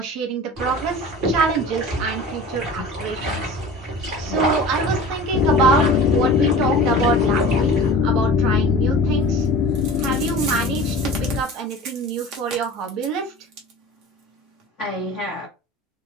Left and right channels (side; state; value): both; normal; correlation 0.38